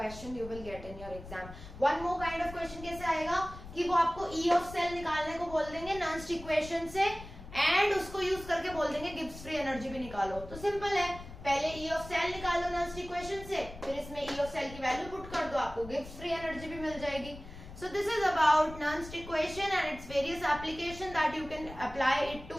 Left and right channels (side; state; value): left; noise; rumble, 14 dB below the sound